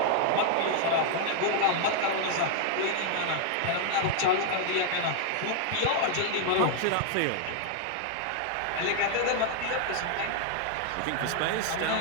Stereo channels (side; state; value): both; different; correlation 0.00